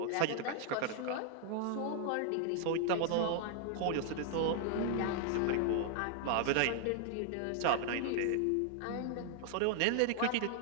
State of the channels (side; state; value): both; different; correlation 0.00